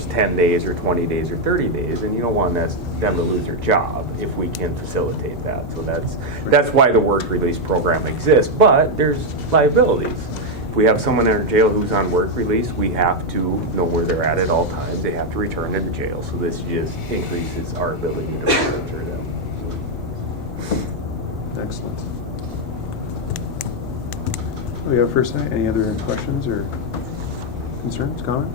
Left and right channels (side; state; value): both; normal; correlation 0.02